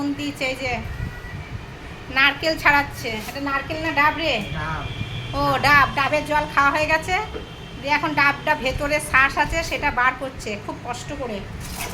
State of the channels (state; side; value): identical; both; correlation 1.00